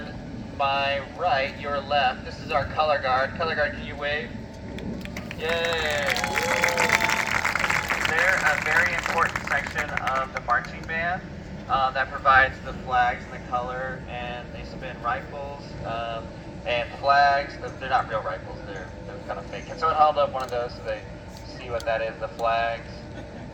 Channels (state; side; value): identical; both; correlation 1.00